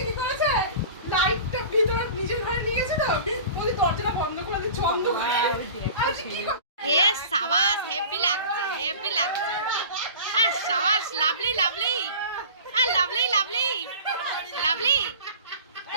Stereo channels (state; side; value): inverted; both; correlation -0.38